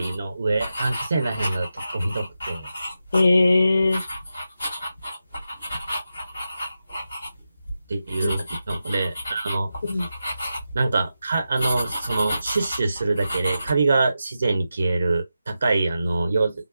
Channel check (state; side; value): inverted; both; correlation -0.90